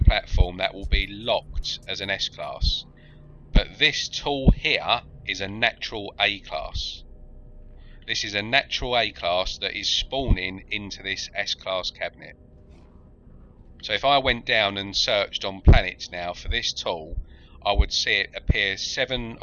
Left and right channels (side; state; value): both; identical; correlation 1.00